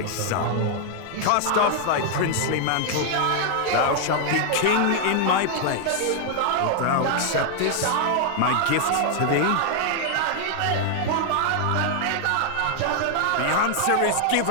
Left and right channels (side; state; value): both; different; correlation 0.00